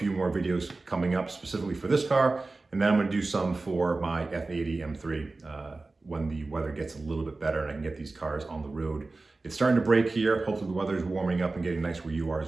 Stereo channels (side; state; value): left; quieter; 3.4 dB